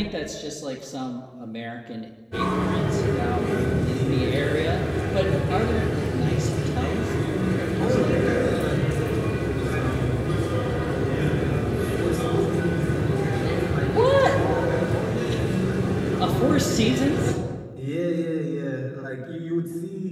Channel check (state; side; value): identical; both; correlation 1.00